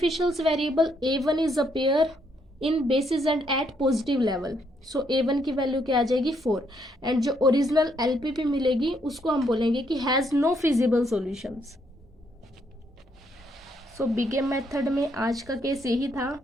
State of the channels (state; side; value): normal; both; correlation 0.73